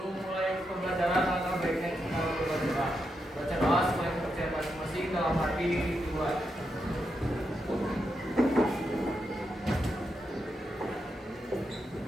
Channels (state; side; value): normal; both; correlation 0.84